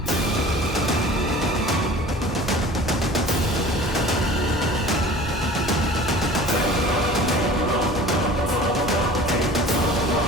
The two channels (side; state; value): both; normal; correlation 0.43